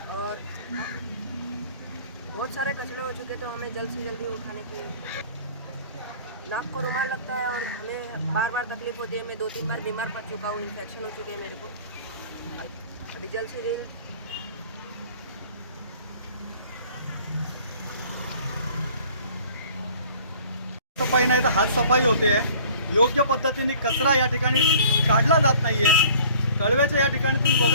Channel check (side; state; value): both; inverted; correlation -0.50